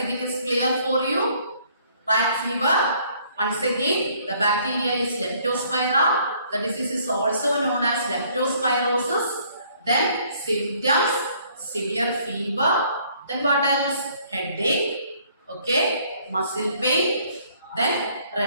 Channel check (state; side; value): inverted; both; correlation -0.62